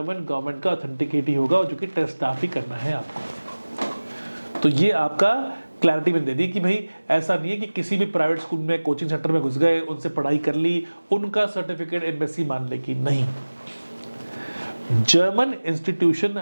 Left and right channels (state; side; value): inverted; both; correlation -1.00